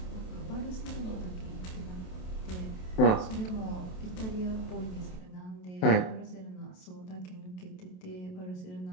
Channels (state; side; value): late; right; 28 ms